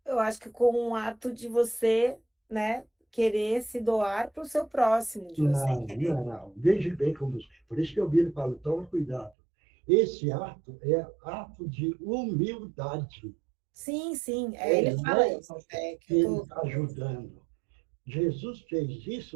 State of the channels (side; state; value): left; drops out; at 9.3 s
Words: Eu acho que com um ato de você, né, querer se doar para o seu próximo, de você Não, querer. não, não. Veja bem como. Por isso que eu viro e falo, toma cuidado. Esse ato é ato de humildade. Sim, ele Não fala é isso, é que que eu ele tô. está ajudando. Jesus fez